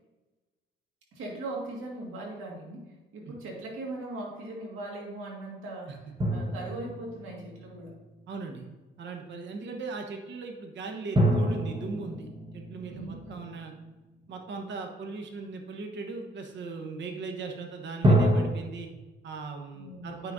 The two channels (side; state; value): both; normal; correlation 0.66